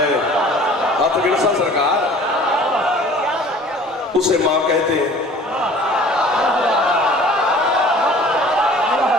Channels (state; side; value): normal; both; correlation 0.48